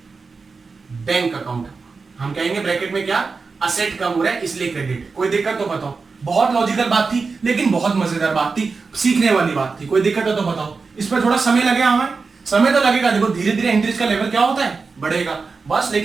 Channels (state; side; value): quieter; left; 4.5 dB